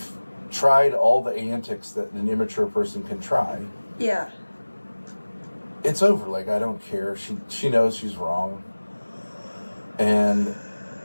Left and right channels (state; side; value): inverted; both; correlation -1.00